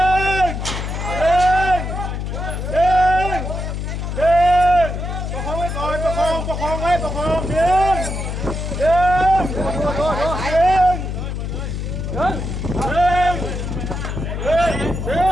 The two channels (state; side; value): noise; left; hum, 4 dB below the sound